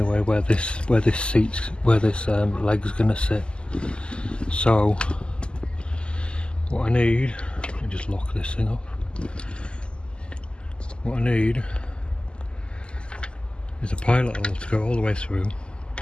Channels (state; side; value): late; right; 0.050 ms